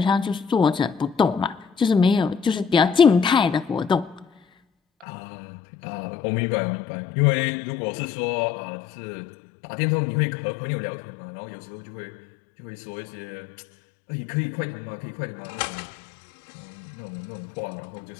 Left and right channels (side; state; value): right; drops out; at 5.1 s